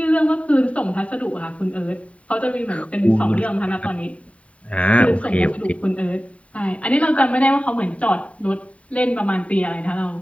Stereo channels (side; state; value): right; late; 0.065 ms